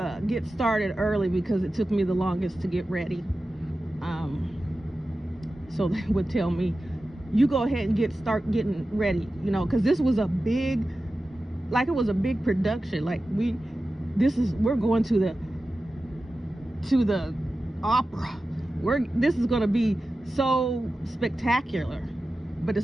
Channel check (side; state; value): both; normal; correlation 0.94